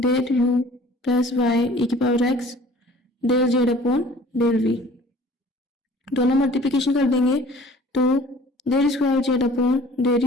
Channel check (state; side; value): normal; both; correlation 0.49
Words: u plus y e की power x del Z upon del v। दोनों मल्टीप्लिकेशन कर देंगे तो del square Z upon